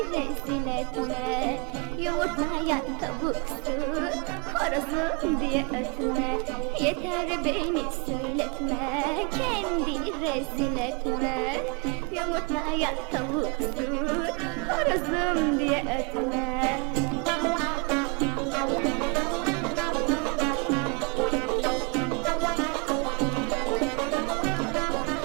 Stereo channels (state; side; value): quieter; left; 31.7 dB